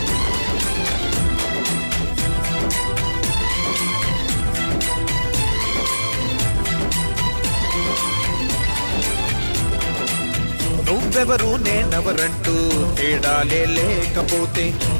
నువ్వెవరు నేనెవరంటూ తేడాలే లేకపోతే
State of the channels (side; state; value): both; inverted; correlation -1.00